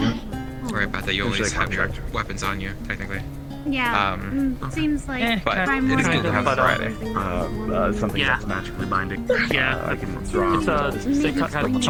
Right about that, you always have your weapons on you, technically. Yeah, seems like But it is good to have Friday. Something that's magically binding. Yeah, I can draw. They kind of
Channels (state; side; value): identical; both; correlation 1.00